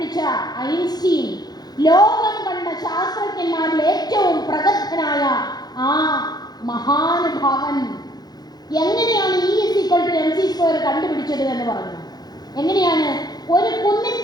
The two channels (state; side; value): late; right; 0.19 ms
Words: ഐൻസ്റ്റീൻ ലോകം കണ്ട ശാസ്ത്രജ്ഞന്മാരിൽ ഏറ്റവും പ്രഗത്ഭനായ ആ മഹാനുഭാവൻ എങ്ങനെയാണ് E=mc² കണ്ടുപിടിച്ചത് എന്ന് പറഞ്ഞു. എങ്ങനെയാണ്? ഒരു